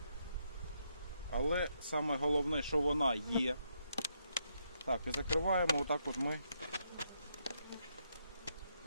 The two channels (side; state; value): both; inverted; correlation -0.77